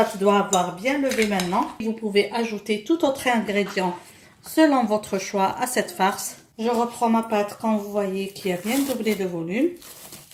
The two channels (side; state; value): both; identical; correlation 1.00